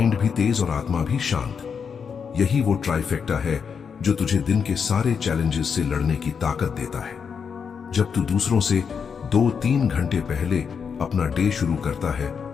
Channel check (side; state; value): right; quieter; 6.4 dB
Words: भी तेज और आत्मा भी शांत। यही वो ट्राइफेक्टा है जो तुझे दिन के सारे चैलेंजेस से लड़ने की ताकत देता है। जब तू दूसरों से 2-3 घंटे पहले अपना डे शुरू करता है